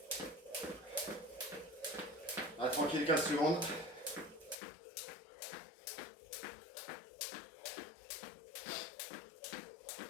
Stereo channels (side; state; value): right; drops out; at 4.5 s